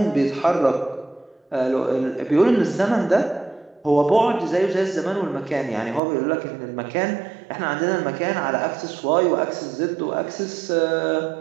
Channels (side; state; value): left; drops out; at 6.0 s